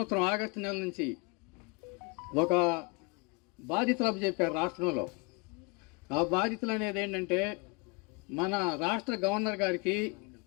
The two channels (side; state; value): right; quieter; 29.8 dB